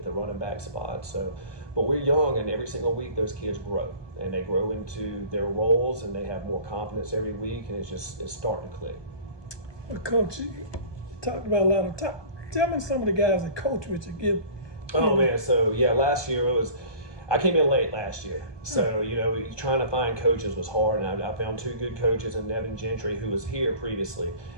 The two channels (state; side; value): late; right; 1.2 ms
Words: the running back spot. But we're young, and every single week those kids grow, and they grow into their roles, and they have more confidence every week, and it's starting to click. Well, Coach, you talked about a lot of time. Tell me some of the guys that coach with you. Oh man, so yeah, last year I came in late last year, so trying to find coaches was hard, and I found 2 good coaches in Nevin Gentry, who was here previously,